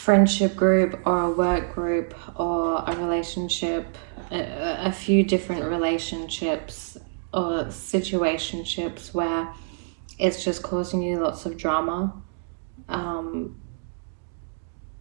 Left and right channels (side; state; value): left; silent; digital silence